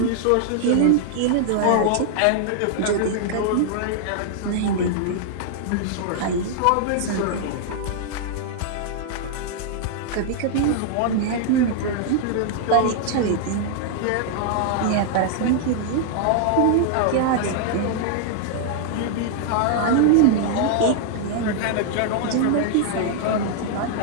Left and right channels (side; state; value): both; different; correlation -0.01